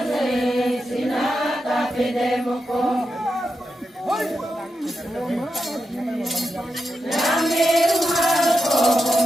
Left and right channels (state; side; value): normal; both; correlation 0.88